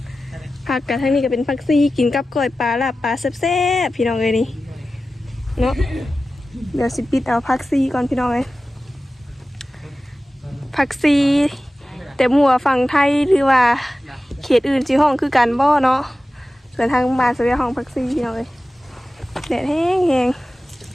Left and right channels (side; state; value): both; normal; correlation 0.95